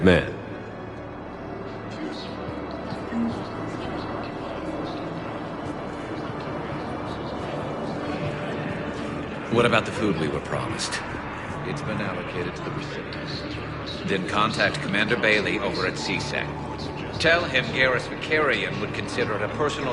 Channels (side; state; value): both; identical; correlation 1.00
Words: man. What about the food we were promised? It's been allocated to the recipients. Then contact Commander Bailey over at CSEC. Tell him Garrus Vakarian would consider it a personal